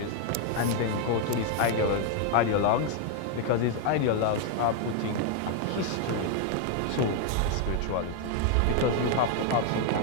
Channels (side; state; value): both; different; correlation 0.00